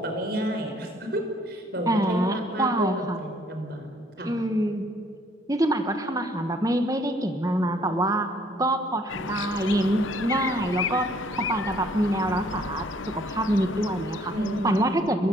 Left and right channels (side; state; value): both; normal; correlation 0.62